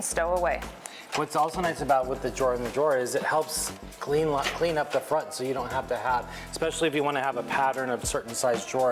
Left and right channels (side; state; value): both; identical; correlation 1.00